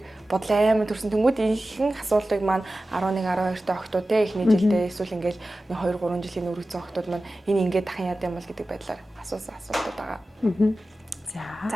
бодол аймаа төрсөн. Тэнгүүд ихэнх асуултыг маань 11 12 та охтууд те эхний жилдээ эсвэл ингээд 2 3 жилийн өргөцсөн охтууд маань энэ ингээд дахин яд юм бол гэдэг байдлаар асуусан асуултууд байгаа.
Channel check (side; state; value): both; normal; correlation 0.95